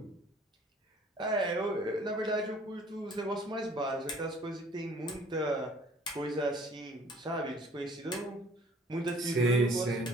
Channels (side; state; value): both; normal; correlation 0.54